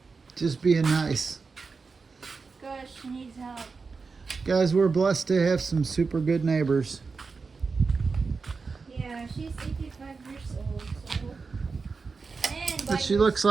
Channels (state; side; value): quieter; left; 4.6 dB